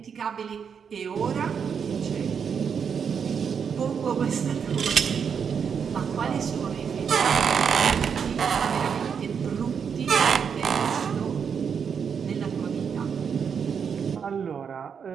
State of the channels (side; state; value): left; quieter; 6.9 dB